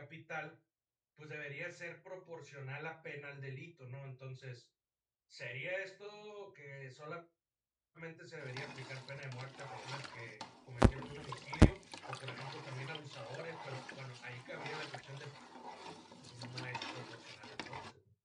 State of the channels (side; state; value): both; identical; correlation 1.00